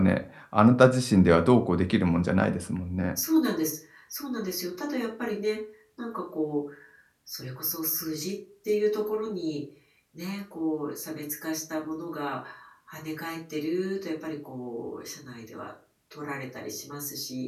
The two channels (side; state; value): both; identical; correlation 1.00